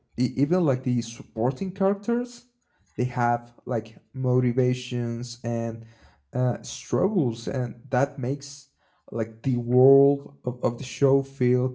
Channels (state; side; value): identical; both; correlation 1.00